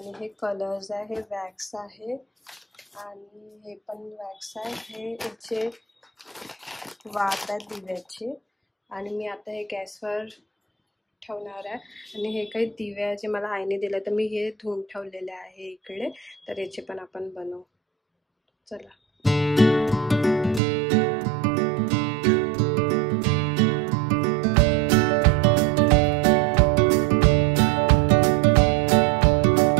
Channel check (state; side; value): drops out; left; at 20.6 s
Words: हे कलर्स आहे, हे वॅक्स आहे, आणि हे पण वॅक्स आहे. हे याचे वात आहे दिव्याचे, आणि मी आता हे गॅसवर ठेवणार आहे. आणि हे काही दिवे आहे जे मला आईने दिले, तर मी हे धुवून ठेवलेले आहे इकडे, तर याचे पण आपण बनवू. चला.